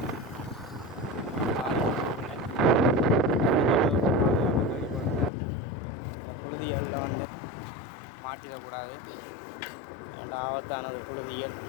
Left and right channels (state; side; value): drops out; right; at 5.3 s